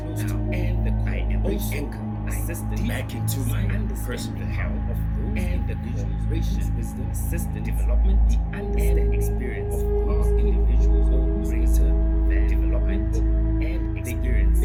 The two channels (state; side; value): identical; both; correlation 1.00